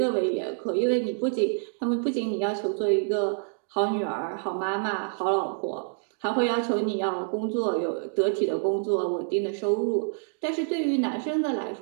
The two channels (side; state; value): left; silent; digital silence